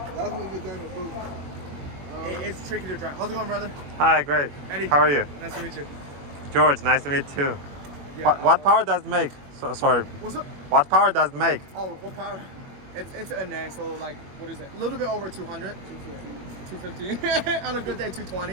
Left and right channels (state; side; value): late; left; 21 ms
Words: That's what you're gonna do. It's tricky to drive. How's it going, brother? Hi, great. Eddie. How are you? Nice to meet you. George, nice to meet you too. Yeah. What power does it make? Sorry. What's up? What power does it make? Oh, what power? It's a NA, so like, what is it? A little bit over 200. 250. On a good day,